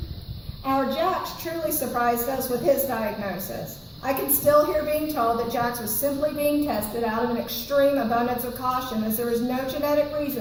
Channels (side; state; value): both; identical; correlation 1.00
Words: Our Jax truly surprised us with his diagnosis. I can still hear being told that Jax was simply being tested out of an extreme abundance of caution, as there was no genetic